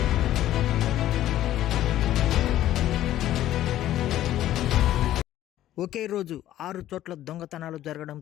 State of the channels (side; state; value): right; quieter; 13.2 dB